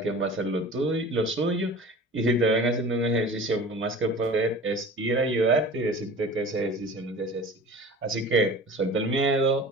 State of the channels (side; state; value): both; normal; correlation 0.39